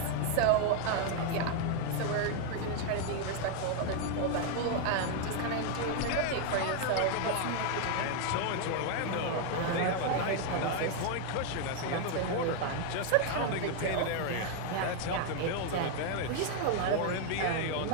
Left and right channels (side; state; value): both; different; correlation 0.00